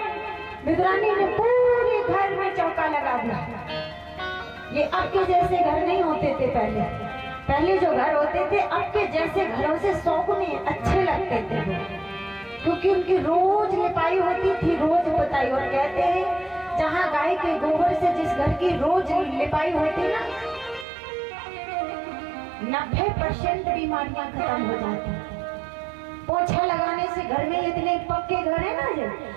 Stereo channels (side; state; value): left; drops out; at 20.9 s